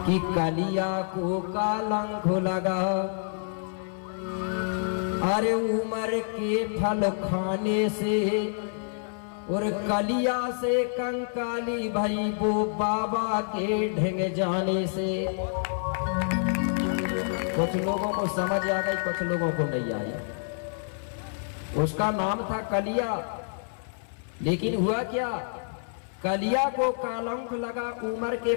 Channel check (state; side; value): silent; right; 59 dB below the other